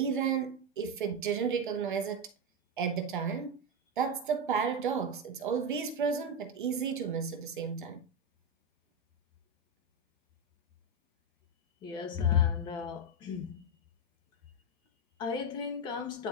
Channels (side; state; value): both; normal; correlation 0.10